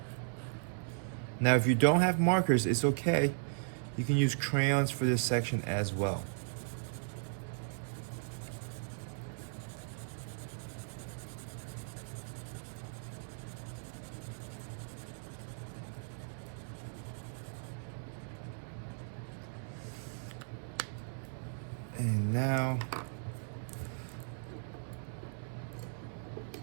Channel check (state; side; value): silent; left; digital silence